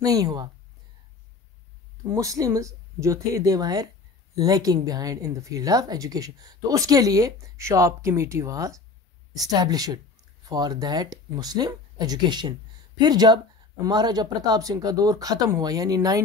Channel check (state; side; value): quieter; right; 4.1 dB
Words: नहीं हुआ। मुस्लिम्स जो थे they were lacking behind in the field of education, तो उसके लिए Sharp committee was established for that Muslim education. फिर जब महाराजा प्रताप सिंह का दौर ख़त्म हुआ, यानी